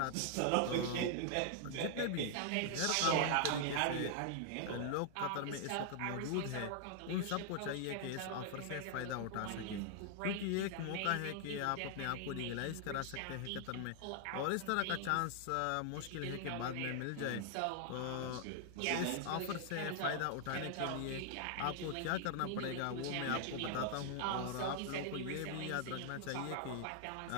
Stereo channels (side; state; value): both; different; correlation 0.00